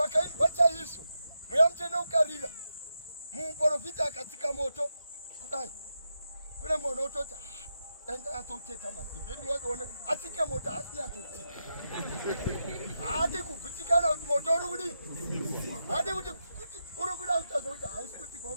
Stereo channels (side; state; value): both; inverted; correlation -0.86